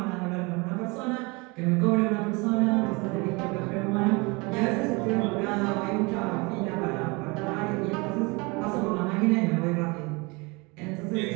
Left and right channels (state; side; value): quieter; left; 27.2 dB